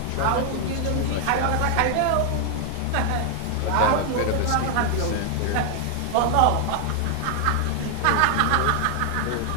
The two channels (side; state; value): both; different; correlation 0.00